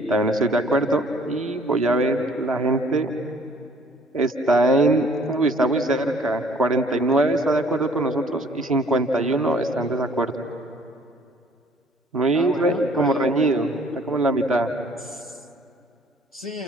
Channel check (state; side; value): normal; both; correlation 0.57